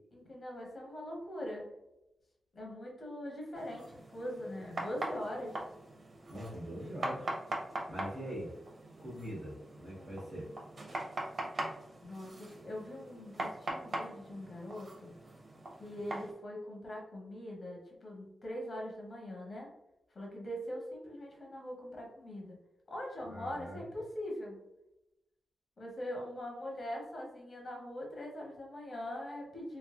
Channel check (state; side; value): normal; both; correlation 0.88